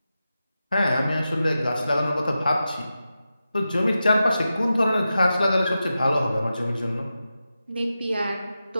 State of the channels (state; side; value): inverted; both; correlation -0.91